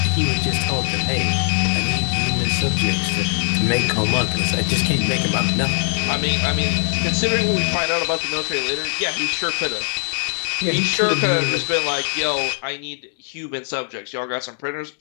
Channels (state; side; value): silent; right; 63 dB below the other